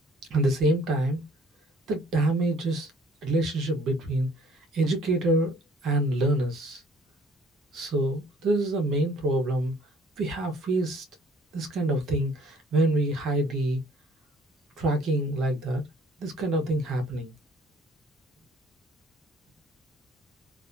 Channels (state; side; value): normal; both; correlation 0.57